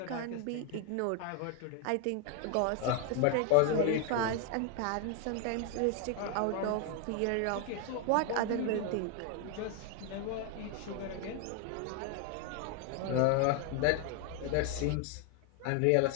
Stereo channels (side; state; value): both; different; correlation 0.01